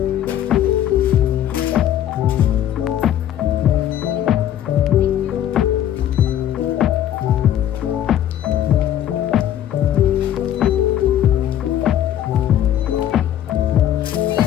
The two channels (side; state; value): right; quieter; 11.1 dB